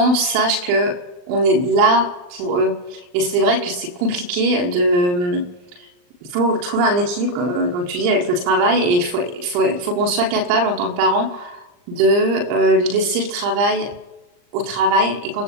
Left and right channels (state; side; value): late; left; 39 ms